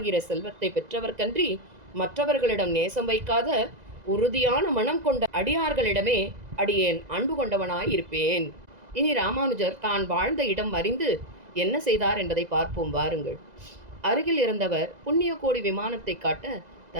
செல்வத்தை பெற்றவர்கன்றி மற்றவர்களிடம் நேசம் வைக்காத உறுதியான மனம் கொண்ட அடியார்களிடமே அடியேன் அன்பு கொண்டவனாயிருப்பேன். இனி ராமானுஜர் தான் வாழ்ந்த இடம் அறிந்து என்ன செய்தார் என்பதை பார்ப்போம் வாருங்கள். அருகில் இருந்தவர் புண்ணிய கோடி விமானத்தை காட்ட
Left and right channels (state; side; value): late; left; 2.0 ms